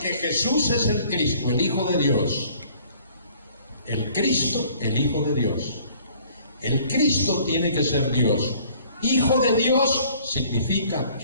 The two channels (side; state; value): both; inverted; correlation -0.55